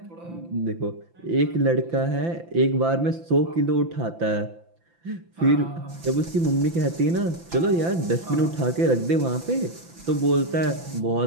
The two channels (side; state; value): left; late; 5.9 ms